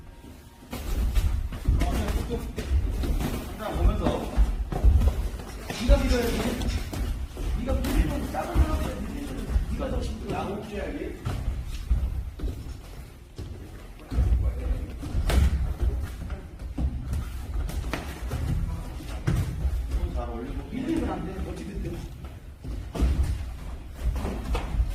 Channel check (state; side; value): identical; both; correlation 1.00